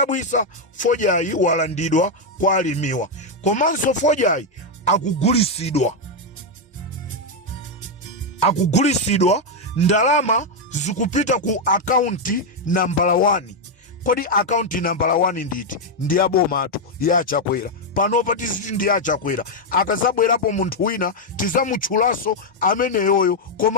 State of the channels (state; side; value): normal; both; correlation 0.01